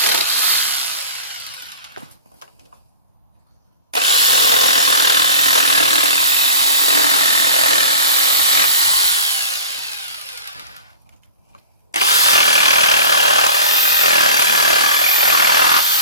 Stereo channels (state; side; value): inverted; both; correlation -0.39